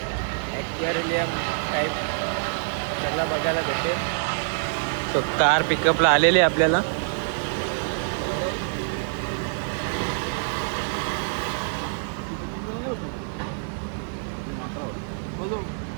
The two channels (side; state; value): left; silent; digital silence